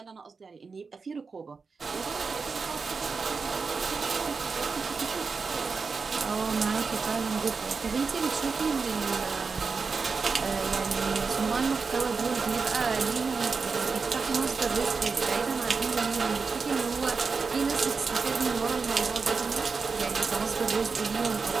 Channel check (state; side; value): quieter; left; 4.8 dB